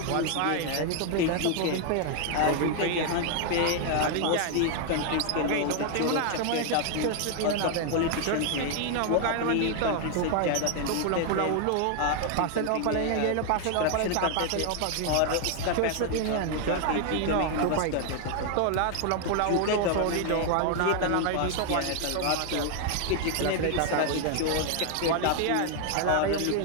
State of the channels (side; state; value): both; different; correlation 0.00